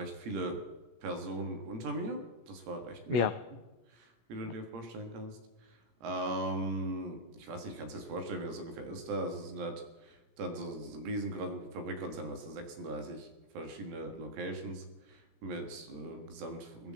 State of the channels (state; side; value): late; left; 17 ms